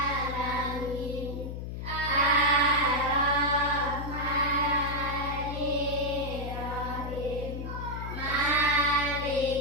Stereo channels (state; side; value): noise; left; hum, 6 dB below the sound